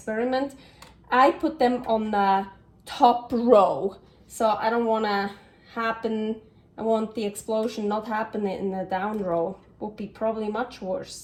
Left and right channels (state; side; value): identical; both; correlation 1.00